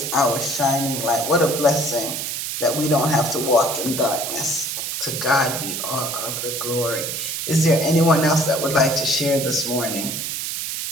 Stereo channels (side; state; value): right; noise; hiss, 4 dB below the sound